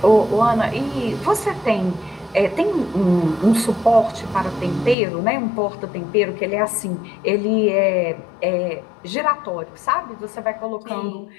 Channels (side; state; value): right; drops out; at 5.0 s